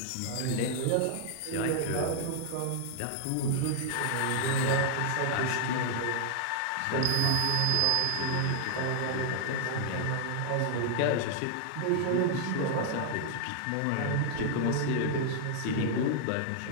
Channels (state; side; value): different; both; correlation 0.00